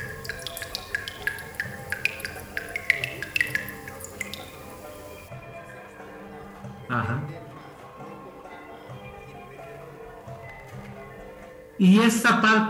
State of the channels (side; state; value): both; identical; correlation 1.00